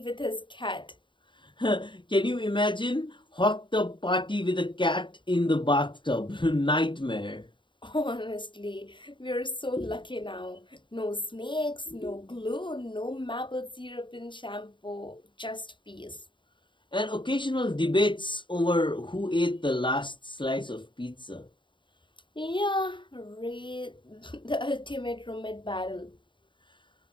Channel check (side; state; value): right; late; 0.23 ms